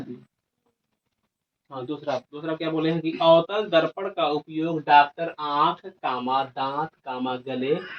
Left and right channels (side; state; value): both; identical; correlation 1.00